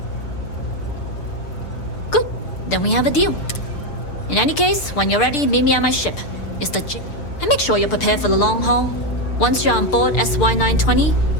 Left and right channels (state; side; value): late; right; 6.7 ms